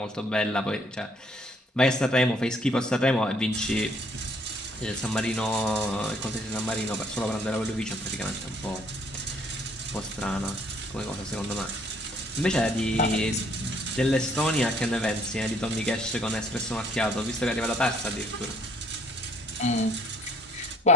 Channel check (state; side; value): normal; both; correlation 0.63